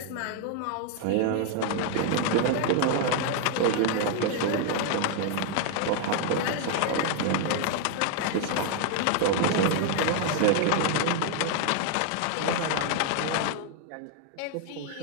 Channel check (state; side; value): different; both; correlation 0.00